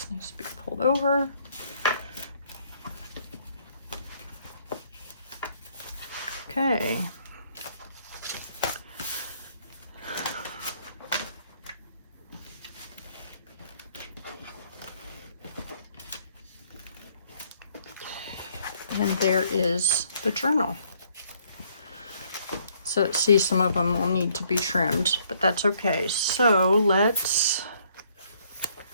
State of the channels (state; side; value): inverted; both; correlation -0.66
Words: needs to be pulled over. Okay. And there is the journal. So see, some of them will need to be trimmed, but that's okay. So let's